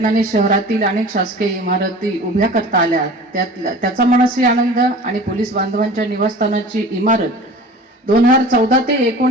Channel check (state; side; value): normal; both; correlation 0.40